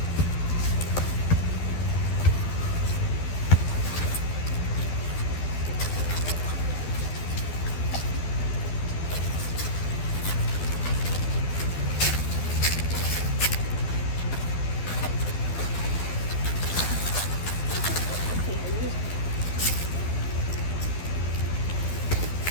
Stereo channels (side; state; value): right; late; 12 ms